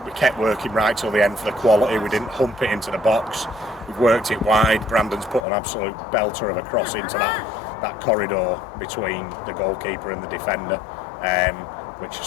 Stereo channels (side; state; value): right; drops out; at 5.5 s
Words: we kept working right till the end for the quality. We didn't hump it into the box. We've worked it wide. Brandon's put an absolute belter of a cross into that corridor between the goalkeeper and the defender, which a